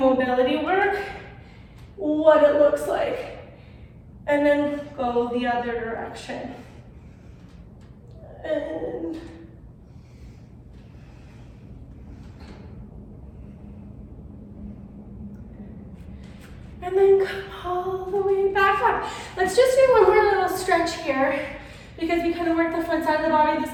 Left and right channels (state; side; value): identical; both; correlation 1.00